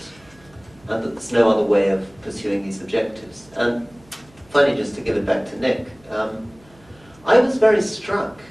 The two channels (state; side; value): noise; right; hum, 28 dB below the sound